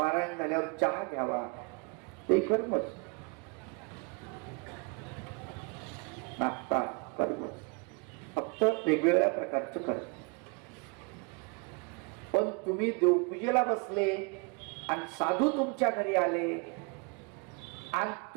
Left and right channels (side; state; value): left; quieter; 32.0 dB